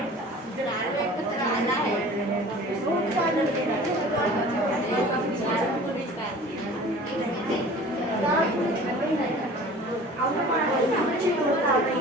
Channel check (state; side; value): normal; both; correlation 0.44